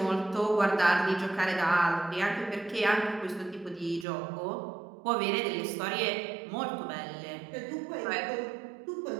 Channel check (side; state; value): left; drops out; at 4.0 s